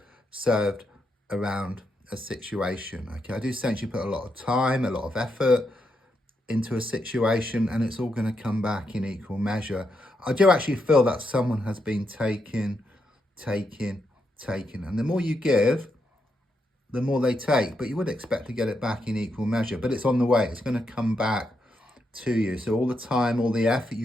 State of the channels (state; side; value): normal; both; correlation 0.82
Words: served around a situation. Okay, I do sense you put a lot of time, a lot of effort into a situation, and it's all going to come back in equal measure. I do actually feel that someone has been taking, and the more you give, the more they take, but you would expect to get it back in equal measure. But it's on the way. It's going to come back to you. So all the time, all the effort